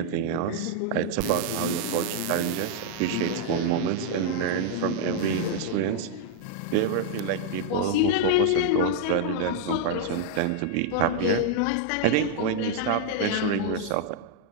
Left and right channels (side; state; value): both; different; correlation 0.00